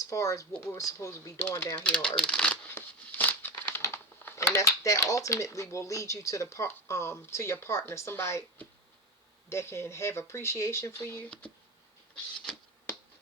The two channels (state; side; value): normal; both; correlation 0.20